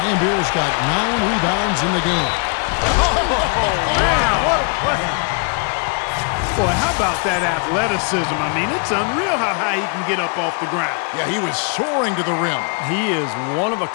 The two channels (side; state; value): right; quieter; 38.8 dB